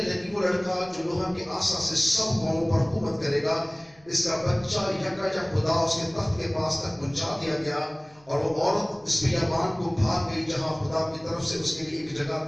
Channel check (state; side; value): noise; right; hum, 30 dB below the sound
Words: لگی، وہ لڑکا جو لوہا کے آسا سے سب قوموں پر حکومت کرے گا، اس کا بچہ یکا خدا اس کے تخت کے پاس تک پہنچا دیا گیا. اور وہ عورت اس بیابان کو بھاگ گئی جہاں خدا کی طرف سے اس کے لیے ایک جگہ